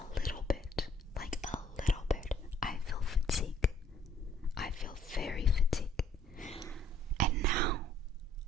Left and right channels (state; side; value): normal; both; correlation 0.62